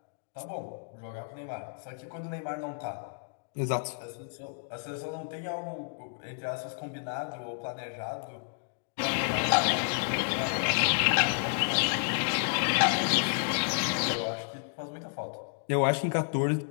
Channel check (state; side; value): silent; right; digital silence